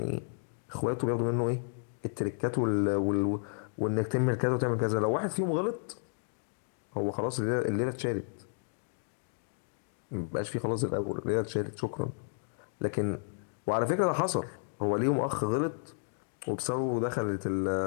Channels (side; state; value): right; silent; digital silence